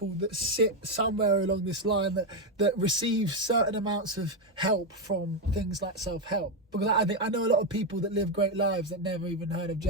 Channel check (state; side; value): normal; both; correlation 0.07